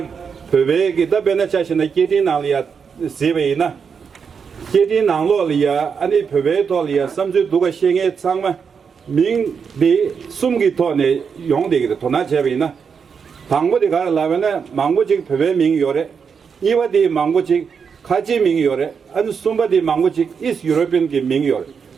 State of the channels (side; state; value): left; quieter; 6.3 dB